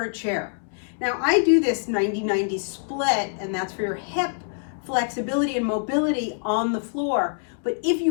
a chair. Now I do this 90-90 split, and that's for your hip flexibility and mobility on the floor. But if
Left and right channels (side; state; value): right; silent; digital silence